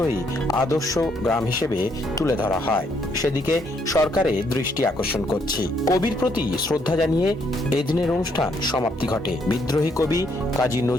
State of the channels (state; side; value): normal; both; correlation 0.71